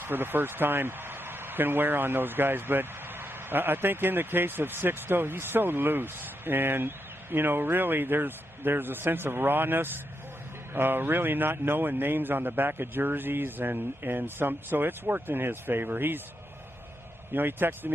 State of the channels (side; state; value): both; normal; correlation 0.83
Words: for the first time can wear on those guys. But I think in the case of Sixto, he's so loose. And, really there's a sense of rawness. Really not knowing names on the back of jerseys so it's worked in his favor. He texted